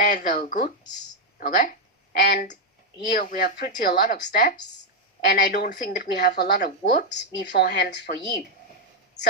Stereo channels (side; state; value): both; normal; correlation 0.01